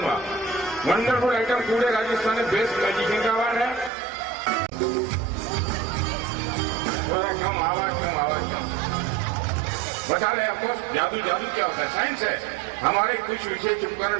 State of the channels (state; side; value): drops out; left; at 3.9 s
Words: वंडरफुल आइटम पूरे राजस्थान में बेस्ट मैजिशियन का अवार्ड है। थोड़ा कम आवाज कम बता रहे आपको। जादू क्या होता है? साइंस है। हमारे कुछ विषय चुपकर